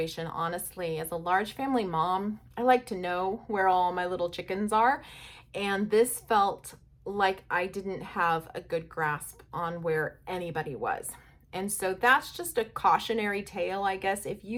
honestly. As a large family mom, I like to know where all my little chickens are. And this felt like I didn't have a good grasp on where anybody was. And so that's just a cautionary tale, I guess. If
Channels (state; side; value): identical; both; correlation 1.00